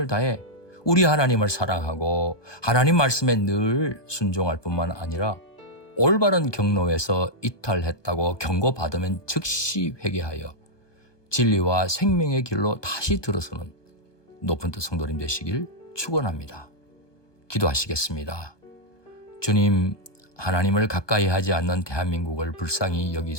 다해 우리 하나님을 사랑하고 하나님 말씀에 늘 순종할 뿐만 아니라 올바른 경로에서 이탈했다고 경고받으면 즉시 회개하여 진리와 생명의 길로 다시 들어서는 높은 뜻 성도님 되시길 축원합니다. 기도하시겠습니다. 주님, 하나님을 가까이 하지 않는 대한민국을 불쌍히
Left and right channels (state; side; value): late; right; 1.2 ms